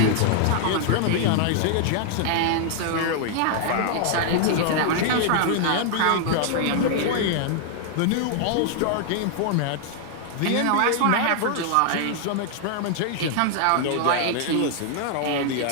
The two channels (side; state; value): both; different; correlation 0.00